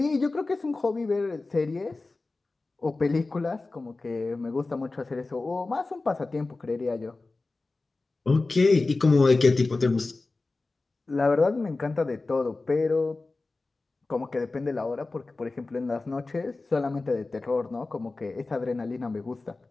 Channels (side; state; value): right; quieter; 3.4 dB